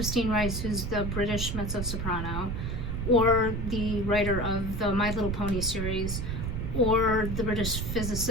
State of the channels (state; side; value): noise; right; rumble, 3 dB below the sound